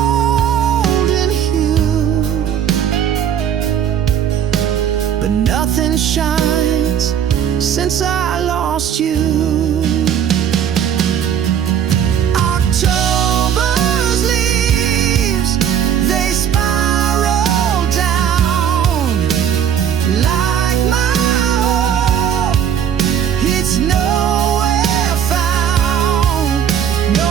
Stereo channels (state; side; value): quieter; left; 8.9 dB